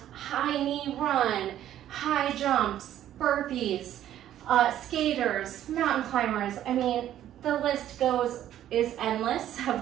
high knee run, high jumps, burpees, skaters, mountain climbers. I mean, the list is endless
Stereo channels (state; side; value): quieter; left; 11.8 dB